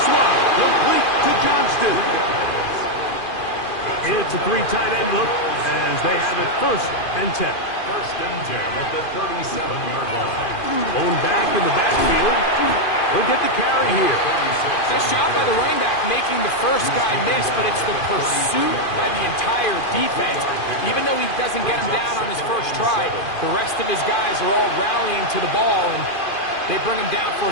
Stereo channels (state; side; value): late; right; 2.5 ms